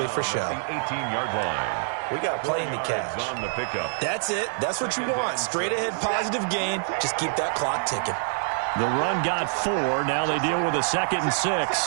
for show. 18-yard line. We got a plane to catch. On the pickup. That's it. That's what you want. Straight ahead positive gain. Just keep that clock ticking. The run got 4. Now they deal with a 2nd and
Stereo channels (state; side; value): silent; left; 58 dB below the other